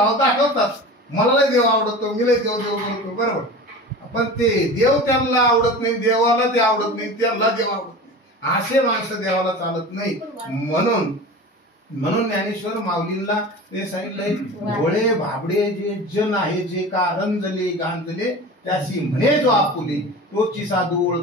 दाखवतात, मला लय देव आवडतो, मी लय देव बोलतो, बरोबर, पण ते देव त्यांना आवडत नाही, देवाला ते आवडत नाही, त्यांना देव आवडत नाही, असे माणसं देवाला चालत नाही। म्हणून ज्ञानेश्वर माऊलींना ते सांगितलंय, भोळे भाबडे जे जन आहे, जे का रंजले गांजले त्याशी म्हणे जो आपुले, तोची साधू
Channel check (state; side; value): normal; both; correlation 0.34